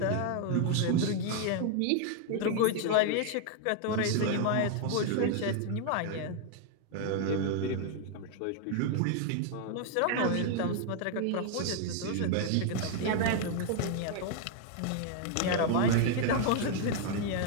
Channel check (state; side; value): different; both; correlation 0.00